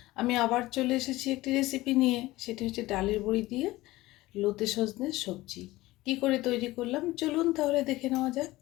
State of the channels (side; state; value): right; quieter; 18.4 dB